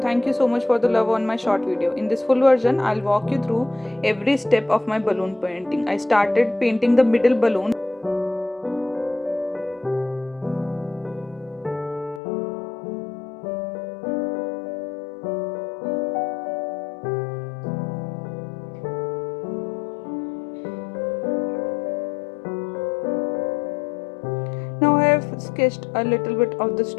thank you so much for the love on my short video. In this full version, I'll walk you through every step of my balloon painting. I started painting the middle balloon. Now I have sketched a little bit of the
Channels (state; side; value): drops out; right; at 12.2 s